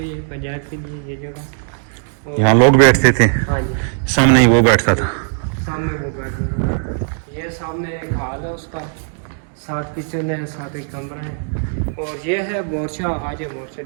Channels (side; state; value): left; silent; 65 dB below the other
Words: पंचायत के लिए ये जगह। यहाँ लोग बैठते थे। हाँ जी। सामने ही वो बैठता था। सामने वो बैठता था। ये सामने एक हाल है उसका, 7 किचन है, 7 एक कमरा है। और ये है मोर्चा। आज ये मोर्चा